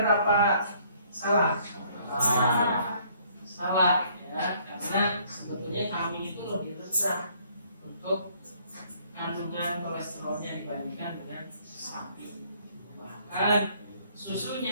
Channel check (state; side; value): inverted; both; correlation -0.63